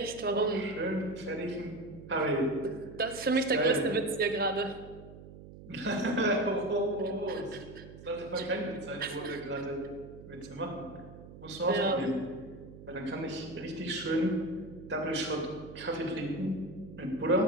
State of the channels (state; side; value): noise; right; hum, 16 dB below the sound